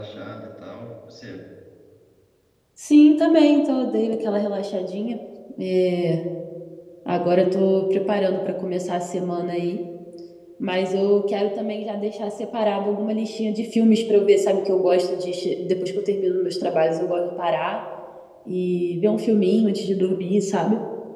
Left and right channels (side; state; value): both; identical; correlation 1.00